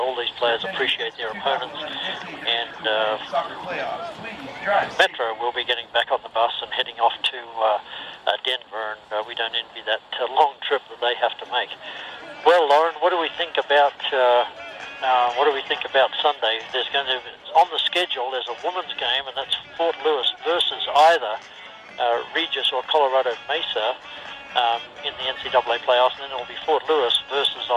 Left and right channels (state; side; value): identical; both; correlation 1.00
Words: these players appreciate their opponents, and Metro will be getting back on the bus and heading off to Denver, and we don't envy that long trip that they have to make. Well, Lauren, what do we think about Sunday? There's going to, on the schedule, there's a women's game, and that's Fort Lewis versus either Regis or Colorado Mesa in the NCAA playoffs, and then it'll be Fort Lewis versus